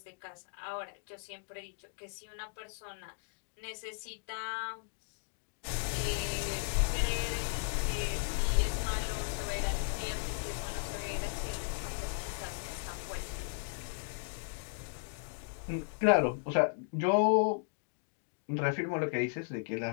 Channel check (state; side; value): silent; right; digital silence